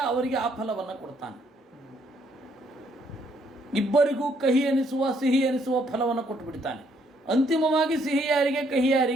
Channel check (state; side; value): normal; both; correlation 0.69